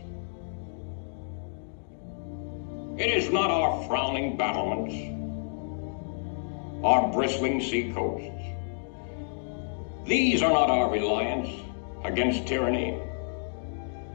It is not our frowning battlements, our bristling seacoasts. These are not our reliance against tyranny.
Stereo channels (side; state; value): right; silent; digital silence